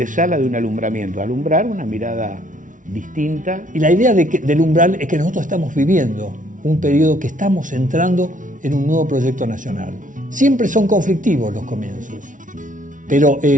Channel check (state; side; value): late; left; 0.38 ms